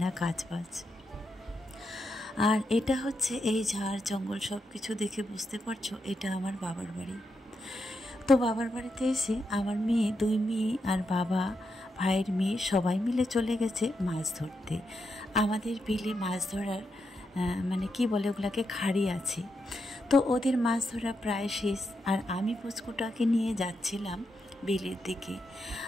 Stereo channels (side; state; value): both; normal; correlation 0.84